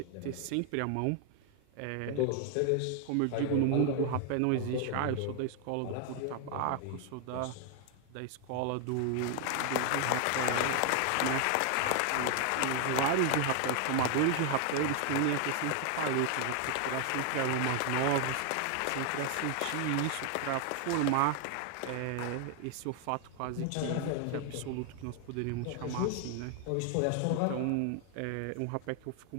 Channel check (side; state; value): both; different; correlation 0.00